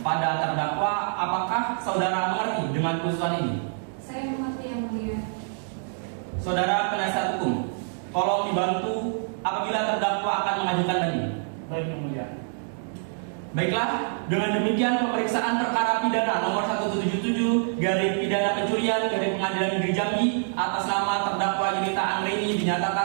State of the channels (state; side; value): silent; left; digital silence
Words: Pada terdakwa, apakah saudara mengerti dengan putusan ini? Saya mengerti yang mulia. Saudara penasihat hukum, tolong dibantu apabila terdakwa akan mengajukan banding. Baik yang mulia. Baiklah, dengan demikian pemeriksaan perkara pidana nomor 177 garing pidana pencurian garing Pengadilan Negeri Jambi atas nama terdakwa Yunita Anggraini